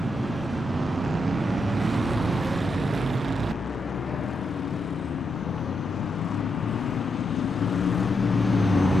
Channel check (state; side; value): normal; both; correlation 0.82